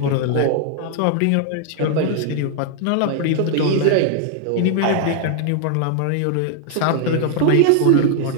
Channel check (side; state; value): both; different; correlation 0.00